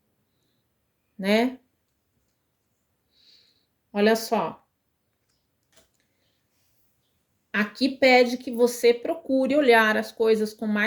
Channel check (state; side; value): identical; both; correlation 1.00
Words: Né? Olha só. Aqui pede que você procure olhar as coisas com